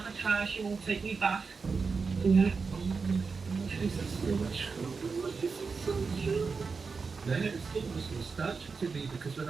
I try, she won't take me back. Jesus, so much. Then it was almost nostalgic to me because when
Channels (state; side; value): quieter; left; 4.9 dB